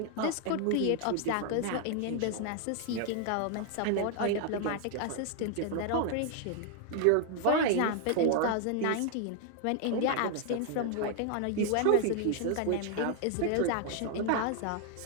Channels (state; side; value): different; both; correlation 0.00